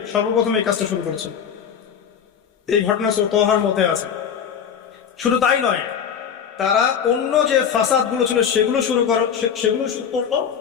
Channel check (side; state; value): right; quieter; 7.8 dB